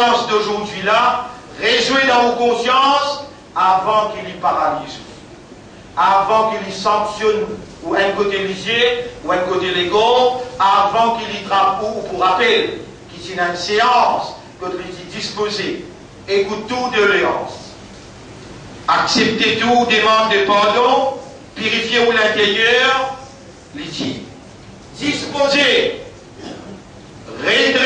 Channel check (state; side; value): identical; both; correlation 1.00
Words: d'aujourd'hui là, réjouir dans vos consciences avant qu'il y paralyse, avant qu'il y sanctionne ou un côté lisier ou un côté légaux, avant qu'il y trappe ou pour rappel, qu'il y a une séance, que tu es disposé, écoute tout de léance, acceptez tout, demande de pardon, purifiez-vous l'intérieur, litier, disposez,